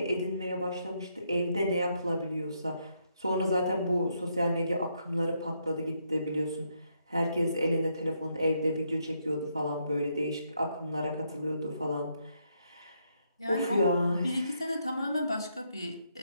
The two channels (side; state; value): both; inverted; correlation -0.76